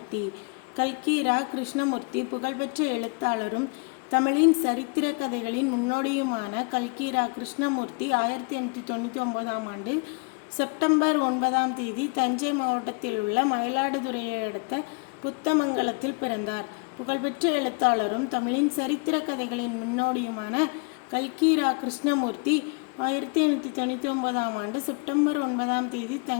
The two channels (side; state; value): right; quieter; 33.0 dB